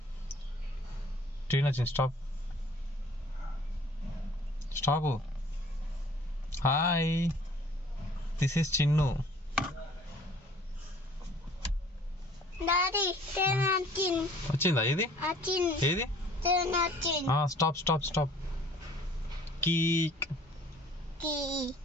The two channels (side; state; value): both; normal; correlation 0.53